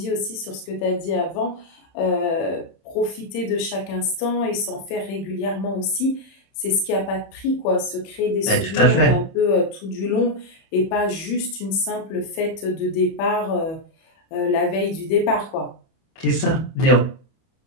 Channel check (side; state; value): right; late; 31 ms